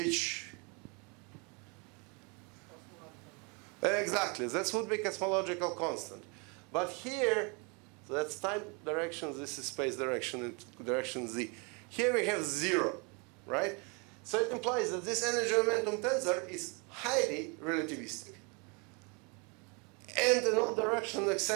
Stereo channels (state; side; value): quieter; left; 32.2 dB